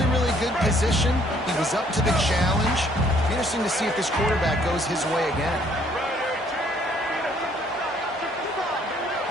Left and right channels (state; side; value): normal; both; correlation 0.63